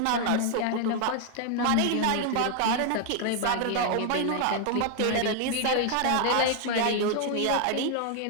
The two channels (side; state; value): both; different; correlation 0.00